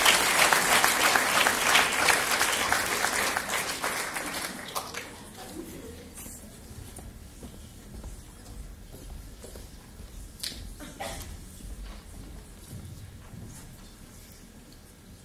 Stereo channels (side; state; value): both; identical; correlation 1.00